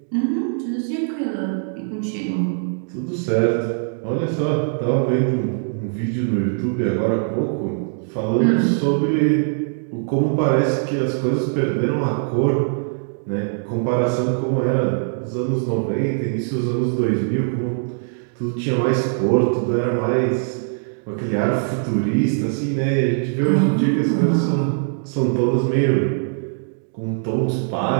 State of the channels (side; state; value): left; silent; digital silence